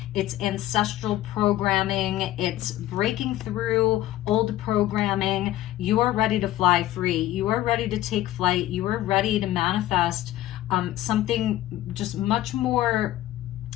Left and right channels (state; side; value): quieter; right; 14.5 dB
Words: it's ancestral programming, it's breaking through old programming. You are ready to fly free. You are ready to take flight. You are ready to manifest something just much more,